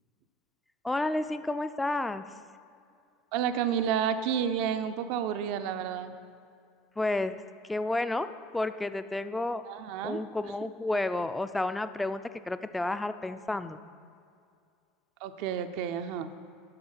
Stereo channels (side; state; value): both; normal; correlation 0.57